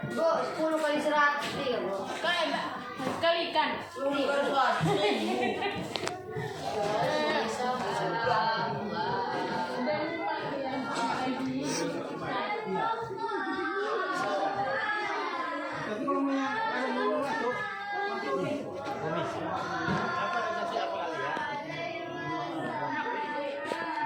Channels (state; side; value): identical; both; correlation 1.00